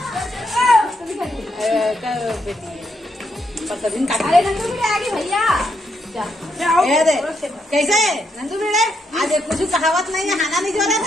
पर दिन काटा रे नंदू भी आ गई भैया। ये दे कैसे नंदू बेड़े आज कुछ कहावत नहीं है। खाना नहीं जो रहा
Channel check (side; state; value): both; normal; correlation 0.78